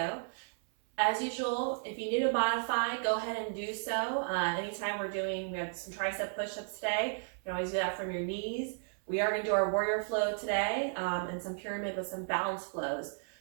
As usual, if you need to modify, go ahead and do so. Anytime we have some tricep push-ups today, you can always do that from your knees. We are going to do our warrior flow today and some pyramid with some balance flows.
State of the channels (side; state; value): left; silent; 55 dB below the other